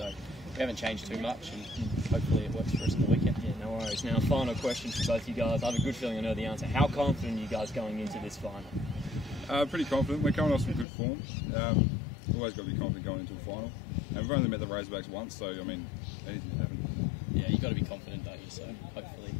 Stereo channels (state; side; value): drops out; right; at 10.9 s